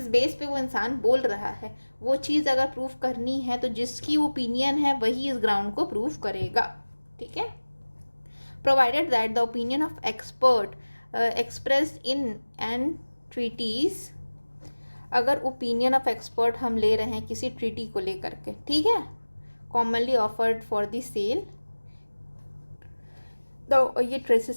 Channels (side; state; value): both; inverted; correlation -1.00